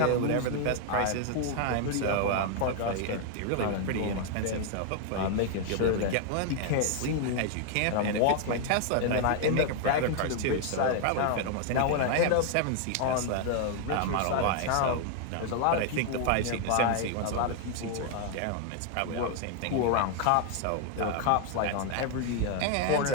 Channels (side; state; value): both; different; correlation 0.00